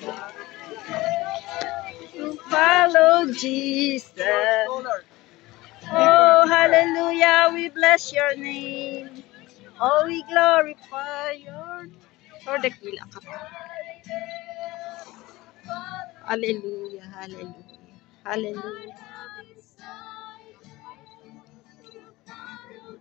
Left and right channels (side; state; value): right; quieter; 19.5 dB